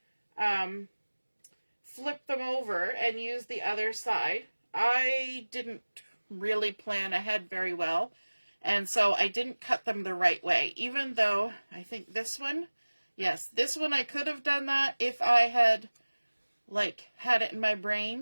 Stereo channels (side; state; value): both; inverted; correlation -1.00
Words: flip them over and use the other side. I didn't really plan ahead very well, and so I didn't cut them the right way, even though I think this one, yes, this one I could have done that if I had had it in my